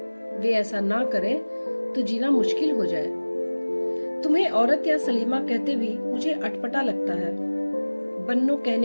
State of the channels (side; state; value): both; inverted; correlation -1.00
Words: वे ऐसा ना करें तो जीना मुश्किल हो जाए। तुम्हें औरत या सलीमा कहते भी मुझे अटपटा लगता है। बन्नो